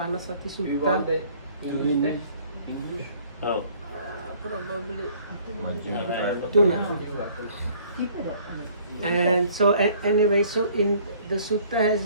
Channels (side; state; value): both; inverted; correlation -0.57